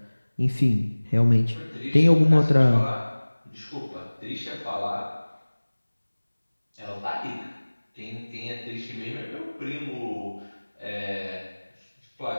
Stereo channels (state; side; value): inverted; both; correlation -1.00